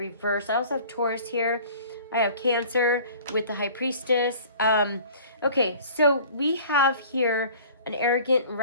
I also have Taurus here. I have Cancer with the High Priestess. Okay, so we have here an arrogant,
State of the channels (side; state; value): both; inverted; correlation -0.47